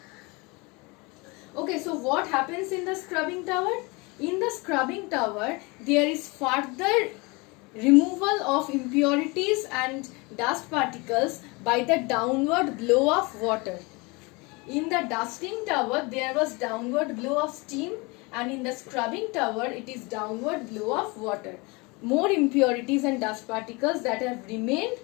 Okay, so what happens in the scrubbing tower? In the scrubbing tower, there is further removal of impurities and dust particles by the downward blow of water. In the dusting tower, there was downward blow of steam, and in the scrubbing tower, it is downward blow of water. More impurities and dust particles that have remained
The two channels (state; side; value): quieter; right; 26.8 dB